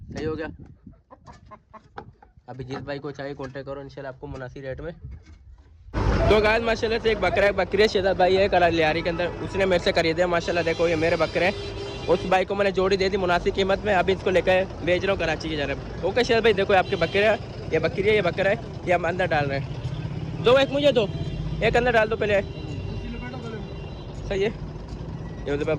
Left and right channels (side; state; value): both; identical; correlation 1.00